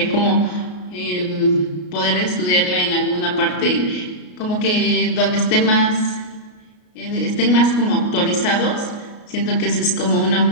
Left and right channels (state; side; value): late; right; 33 ms